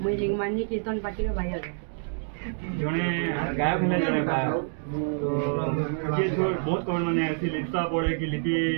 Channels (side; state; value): left; silent; digital silence